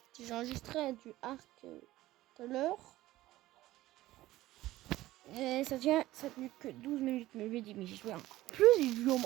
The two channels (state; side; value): quieter; left; 16.3 dB